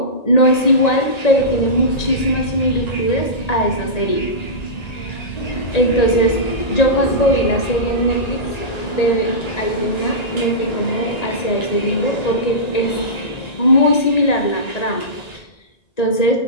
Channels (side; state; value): right; late; 1.8 ms